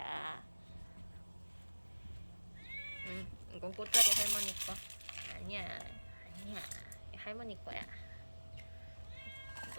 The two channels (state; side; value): inverted; both; correlation -1.00